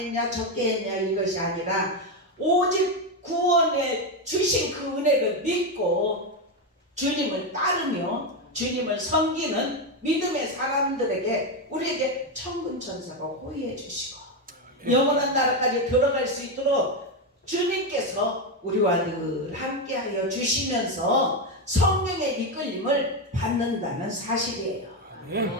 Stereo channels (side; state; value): both; normal; correlation 0.09